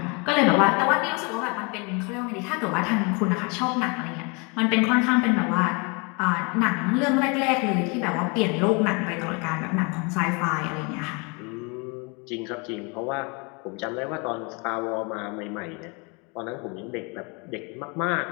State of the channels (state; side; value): quieter; right; 31.2 dB